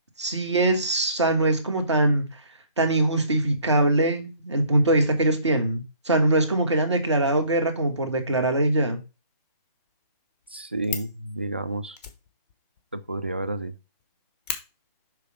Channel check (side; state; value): both; inverted; correlation -0.57